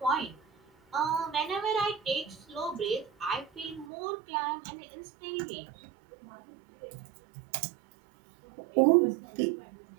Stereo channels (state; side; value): drops out; left; at 3.9 s